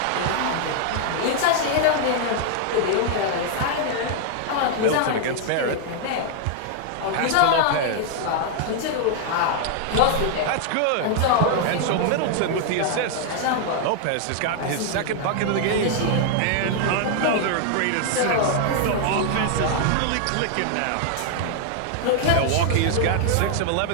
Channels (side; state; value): both; different; correlation 0.00